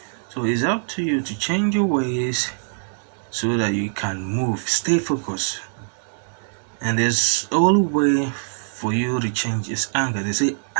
So it's up to you to change your ways so that you can move. Stay focused. And there's only way for you to change is anger. They say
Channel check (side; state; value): left; silent; 60 dB below the other